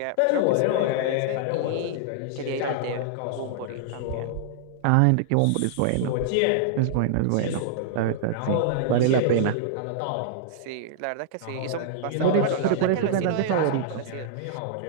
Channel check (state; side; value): different; both; correlation -0.01